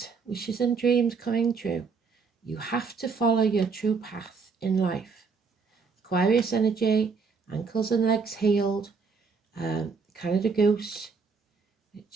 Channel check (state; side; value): quieter; left; 5.1 dB